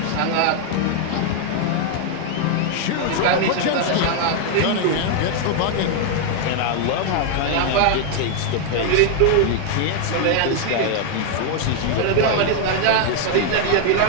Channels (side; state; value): both; different; correlation 0.00